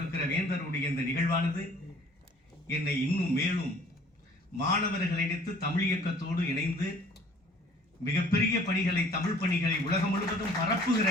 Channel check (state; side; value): normal; both; correlation 0.53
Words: வேந்தருடைய இந்த நிகழ்வானது என்னை இன்னும் மேலும் மாணவர்களை இணைத்து தமிழ் இயக்கத்தோடு இணைந்து மிகப்பெரிய பணிகளை, தமிழ் பணிகளை உலகம் முழுவதும் பரப்புகிற